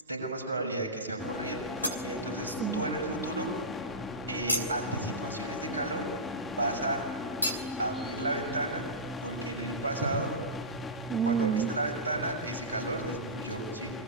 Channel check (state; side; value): normal; both; correlation -0.15